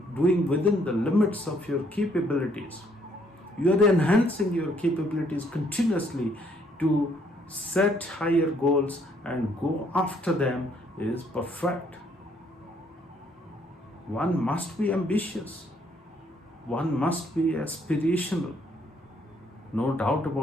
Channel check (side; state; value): both; normal; correlation 0.67